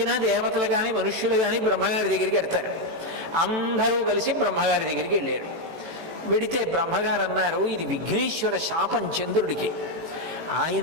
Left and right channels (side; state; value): left; late; 18 ms